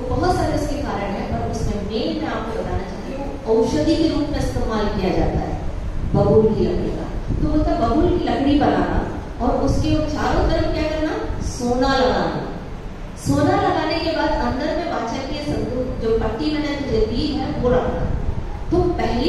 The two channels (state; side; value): identical; both; correlation 1.00